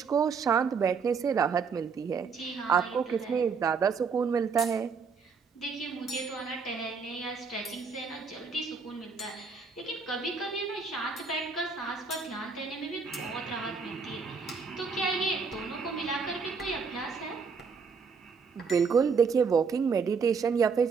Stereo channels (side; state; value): left; quieter; 5.4 dB